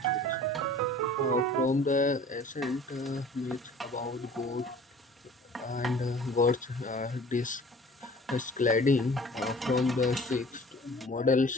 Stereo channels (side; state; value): both; normal; correlation 0.47